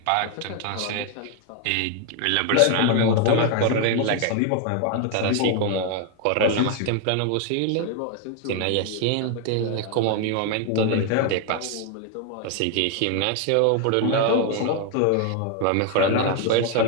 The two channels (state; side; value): different; both; correlation 0.01